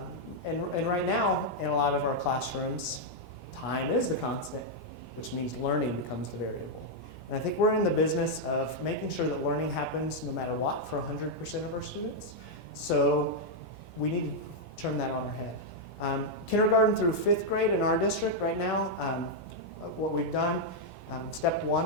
And right now, in a lot of our classrooms, time is the constant, which means learning becomes the variable. And I think we're in the business of making sure that learning happens no matter what for 100% of our students. So we need to turn that on our head. Kindergarten through 5th grade in our district right now, what we've done, step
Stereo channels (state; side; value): normal; both; correlation -0.02